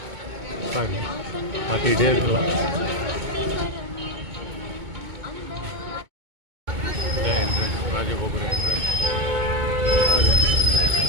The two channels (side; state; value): left; late; 2.2 ms